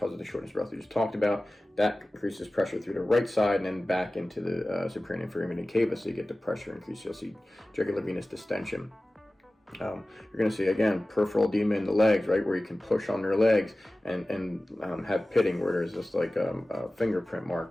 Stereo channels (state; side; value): normal; both; correlation 0.97